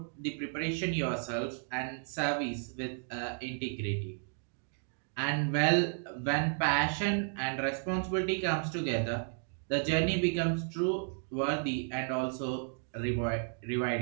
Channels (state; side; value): silent; left; 56 dB below the other